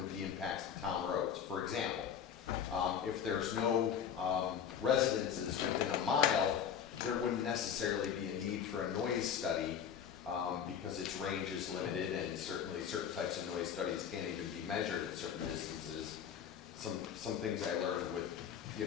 be impacts to town roads. For example, if there's no residences within a mile, there wouldn't necessarily be a need for a noise study because its range is limited, and certainly certain types of noise studies can't even be measured at certain distances. Some things I learned with,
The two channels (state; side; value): quieter; right; 8.3 dB